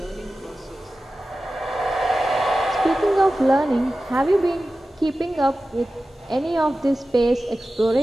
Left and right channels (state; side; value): normal; both; correlation 0.95